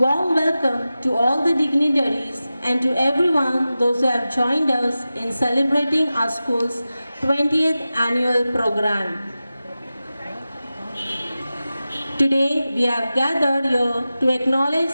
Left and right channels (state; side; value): inverted; both; correlation -0.94